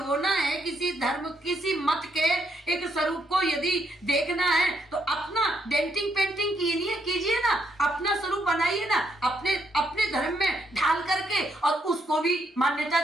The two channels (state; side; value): normal; both; correlation 0.76